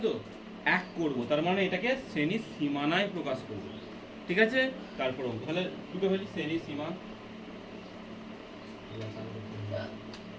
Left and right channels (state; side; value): identical; both; correlation 1.00